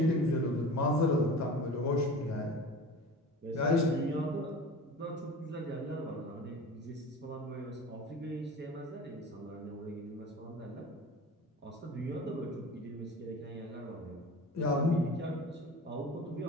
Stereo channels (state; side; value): normal; both; correlation 0.36